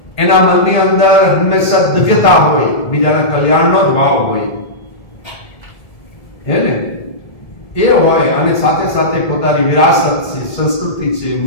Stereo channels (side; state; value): right; late; 1.8 ms